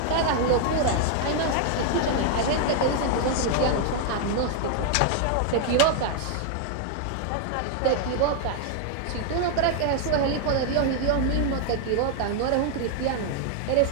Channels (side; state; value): both; different; correlation 0.00